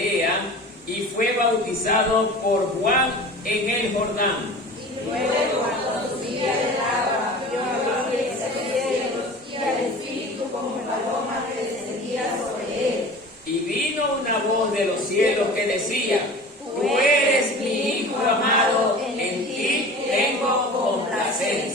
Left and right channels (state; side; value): normal; both; correlation 0.38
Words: y fue bautizado por Juan en el Jordán. Luego, cuando subía del agua, vio abrirse los cielos y al Espíritu como paloma que descendía sobre él. Y vino una voz de los cielos que decía: tú eres mi Hijo amado, en ti tengo